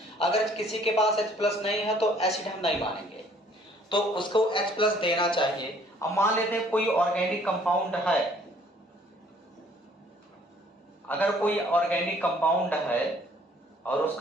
अगर किसी के पास H+ नहीं है तो एसिड हम नहीं मानेंगे, तो उसको H+ देना चाहिए। अब मान लेते हैं कोई ऑर्गेनिक कंपाउंड है, अगर कोई ऑर्गेनिक कंपाउंड है और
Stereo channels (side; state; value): both; normal; correlation 0.59